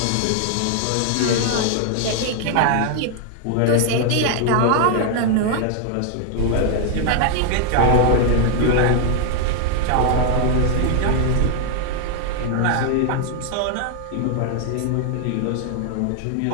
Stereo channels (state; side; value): different; both; correlation 0.00